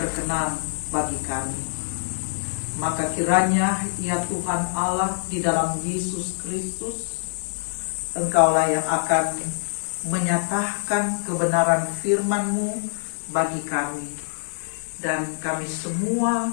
bagi kami. Maka kiranya ya Tuhan Allah di dalam Yesus Kristus, Engkaulah yang akan menyatakan kebenaran firman-Mu bagi kami. Dan kami semua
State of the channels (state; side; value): silent; right; 58 dB below the other